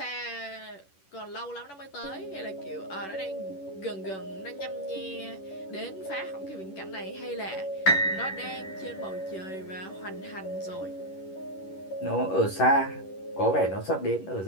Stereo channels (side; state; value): right; late; 11 ms